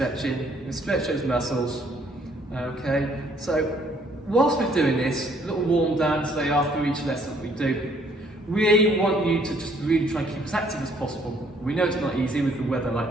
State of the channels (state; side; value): normal; both; correlation 0.64